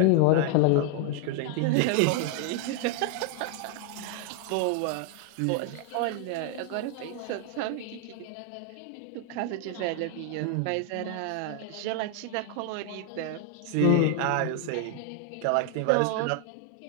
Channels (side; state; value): both; different; correlation 0.00